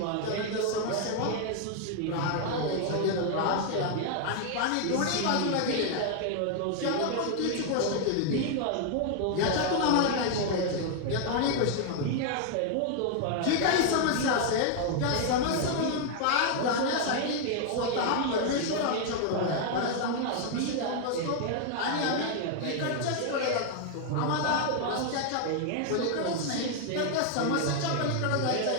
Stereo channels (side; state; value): both; different; correlation 0.00